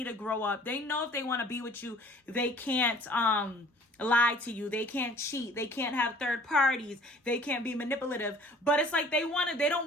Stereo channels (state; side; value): normal; both; correlation 0.51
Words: to grow up. They know if they want to be with you, they can't lie to you, they can't cheat, they can't have third parties, they can't be manipulative, but it's like they don't